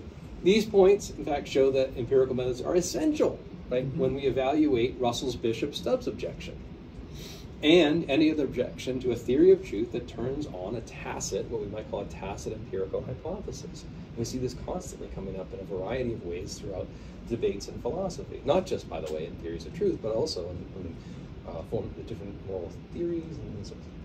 these points, in fact, show that empirical methods are essential, right, when we evaluate Russell's Bishop-Stubbs objection, and any other objection to a theory of truth that turns on a tacit, what we might call a tacit empirical hypothesis. And we see this constantly coming up in a variety of ways throughout debates in philosophy, not just, by the way, in theories of truth, but also in form of different moral theories and so on.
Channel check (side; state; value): both; identical; correlation 1.00